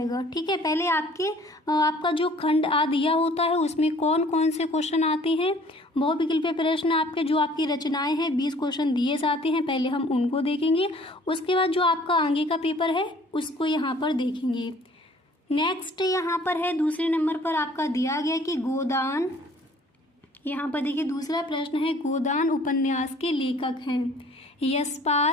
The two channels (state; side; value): normal; both; correlation 0.54